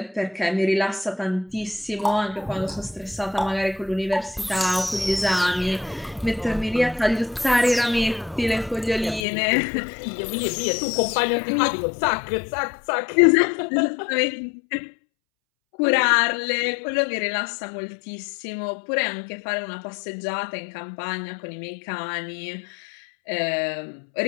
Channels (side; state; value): right; drops out; at 9.2 s